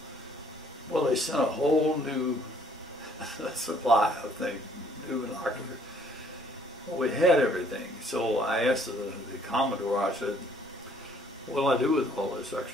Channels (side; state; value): both; normal; correlation 0.61